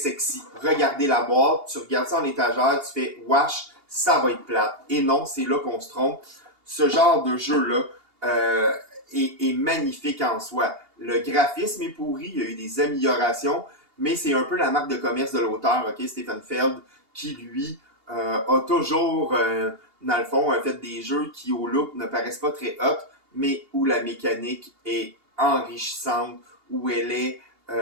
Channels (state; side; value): late; left; 2.8 ms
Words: Regardez la boîte, tu regardes ça en étagère, tu fais « Wesh, ça va être plate ». Et non, c'est là qu'on se trompe. Ce genre de jeu-là est magnifique en soi. Le graphisme est pourri, il y a eu des améliorations, mais c'est un peu la marque de commerce de l'auteur, okay, Stefan Feld, qui lui a toujours, dans le fond, fait des jeux qui au look ne paraissent pas très hot, mais où la mécanique est enrichissante, où elle est